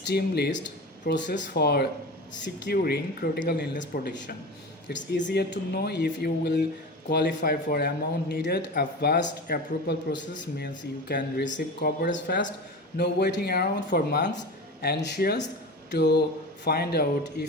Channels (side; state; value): both; normal; correlation 0.29